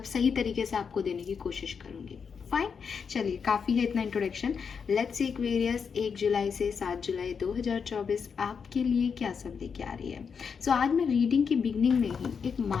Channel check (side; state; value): right; quieter; 6.2 dB